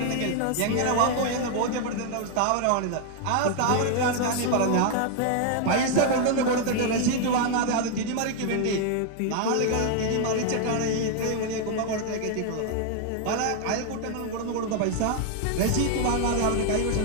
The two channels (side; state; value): both; different; correlation 0.00